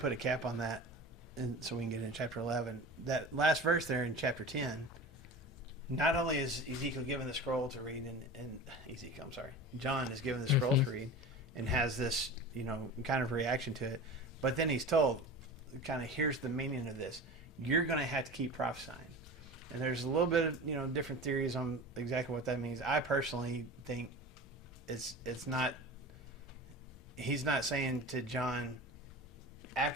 put a cap on that, and so we can get into chapter 11, that last verse there in chapter 10, not only is Ezekiel given the scroll to read, John is given the scroll to read and has this, kind of reaction to it, but then he's told, kind of, here's the meaning of this. You're going to have to keep prophesying. And there's a little bit of, different theories on exactly what that means. I personally think it's not, he's not saying to John,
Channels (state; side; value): normal; both; correlation 0.33